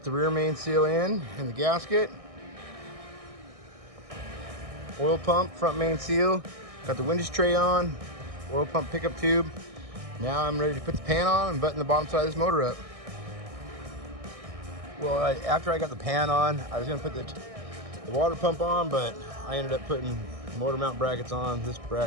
the rear main seal in and the gasket, oil pump, front main seal, got the windows tray on, oil pump pickup tube. Now I'm ready to put the pan on and button the bottom side of this motor up. Well, after I got the pan on, I was going to put the water pump on, but I ended up putting motor mount brackets on. This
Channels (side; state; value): left; late; 1.6 ms